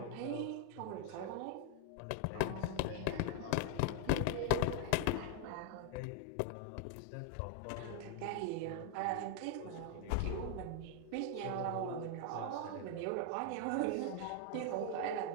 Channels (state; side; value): different; both; correlation 0.00